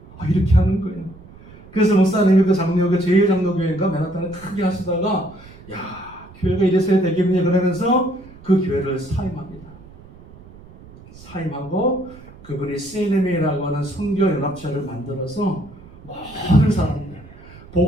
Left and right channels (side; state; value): right; noise; rumble, 21 dB below the sound